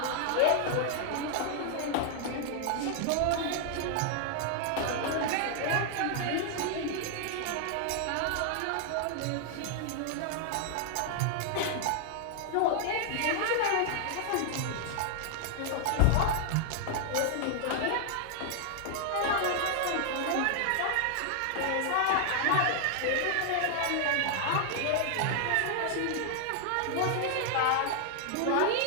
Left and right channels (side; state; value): both; different; correlation 0.00